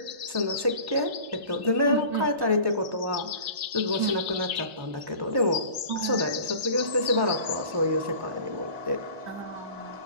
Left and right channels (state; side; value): late; left; 1.1 ms